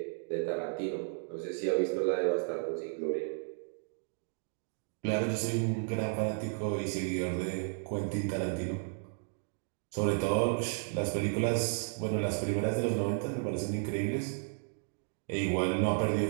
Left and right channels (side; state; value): left; silent; digital silence